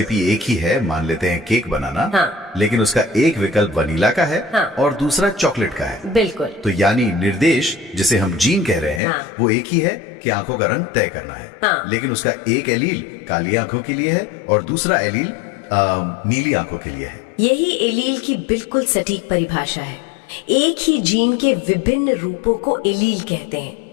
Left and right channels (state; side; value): drops out; right; at 9.0 s